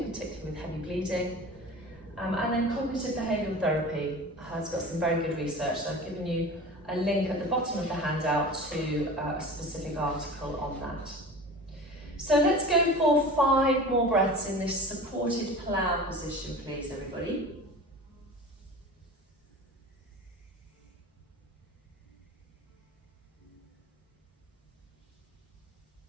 particularly with heavy bleeding. And then cognitive behavioural therapy has got some very good research. So I've given you a link at the bottom of the handout to a specific article on that. So let's go for 5 more breaths in this supported plough position, please, everybody.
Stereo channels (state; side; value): normal; both; correlation 0.36